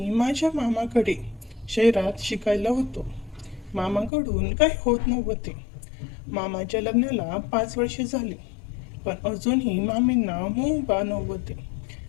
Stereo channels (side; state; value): right; drops out; at 4.1 s